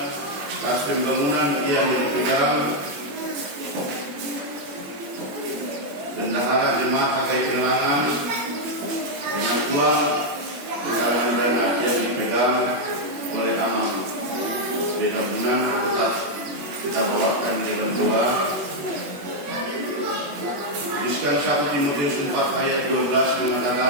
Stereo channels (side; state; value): left; late; 21 ms